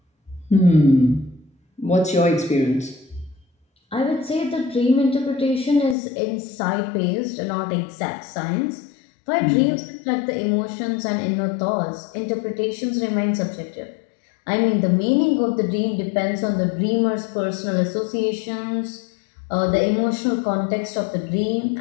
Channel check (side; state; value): right; drops out; at 6.0 s